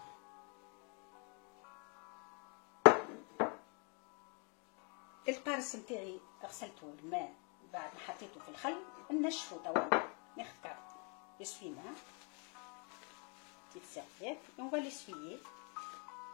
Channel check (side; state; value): right; quieter; 36.7 dB